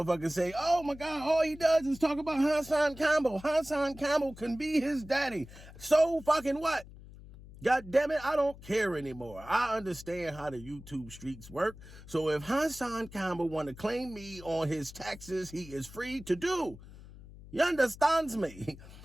say, oh my God, all he does is talk about HassanCampbell. HassanCampbell can be his daddy. So fucking what? God damn it, I don't care anymore. I understand how the YouTube streets work. So if HassanCampbell want to claim me on his taxes, he is free to do. You understands me?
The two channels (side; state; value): left; noise; hum, 18 dB below the sound